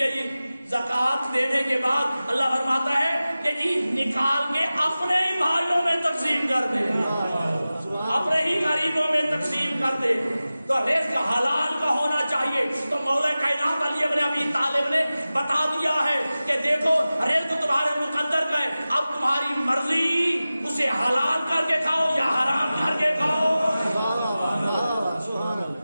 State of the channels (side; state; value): both; inverted; correlation -0.96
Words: ہے جی۔ زکات دینے کے بعد اللہ فرماتا ہے کہ جی نکال کے اپنے ہی بھائیوں میں تقسیم کر دے، اپنے ہی غریبوں میں تقسیم کر دے۔ تو رزق حلال کا ہونا چاہیے۔ تو مولا کائنات علی ابن ابی طالب نے بتا دیا ہے کہ دیکھو رزق تمہارے مقدر کا ہے، اب تمہاری مرضی اسے حلال کر کے کھاؤ یا حرام کر کے کھاؤ۔